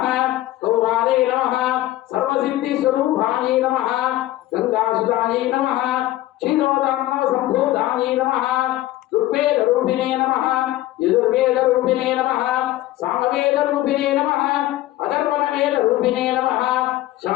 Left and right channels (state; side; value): quieter; right; 15.6 dB